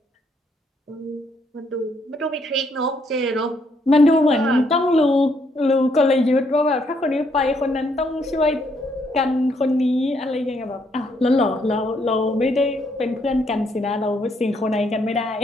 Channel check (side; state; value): both; normal; correlation 0.72